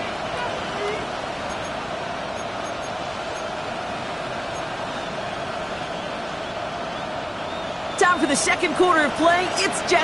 Time for the second quarter of play. It's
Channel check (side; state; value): both; identical; correlation 1.00